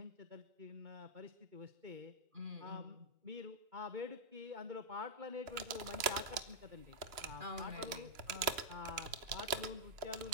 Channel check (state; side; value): late; left; 2.9 ms